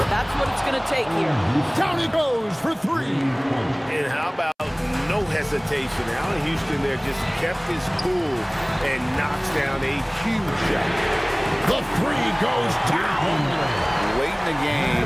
That's what it's going to take here. Down he goes for 3. And how about no hesitation? Allen Houston there just kept his cool and knocks down a huge shot. The 3 goes down. Late in the game,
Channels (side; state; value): both; identical; correlation 1.00